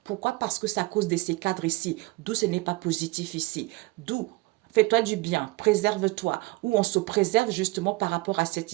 Pourquoi? Parce que c'est à cause de ces cadres ici. D'où ce n'est pas positif ici. D'où fais-toi du bien, préserve-toi. Ou on se préserve justement par rapport à cette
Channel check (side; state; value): left; quieter; 22.0 dB